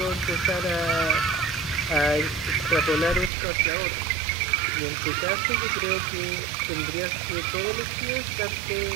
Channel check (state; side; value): drops out; left; at 3.3 s